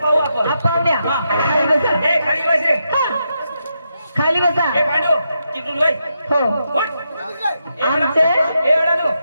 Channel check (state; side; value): inverted; both; correlation -0.84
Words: आपण पाहुण्या हा. खाली बसा. ए खाली बस रे खाली बसा. ए पांडू तिकडून वय हो उठ. आमचे ए अडाणू